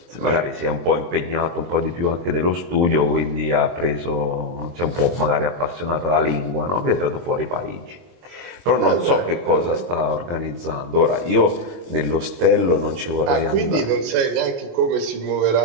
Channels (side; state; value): left; late; 23 ms